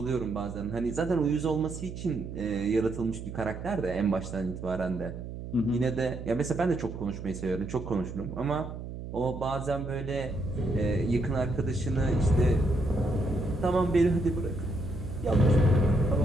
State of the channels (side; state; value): right; noise; hum, 9 dB below the sound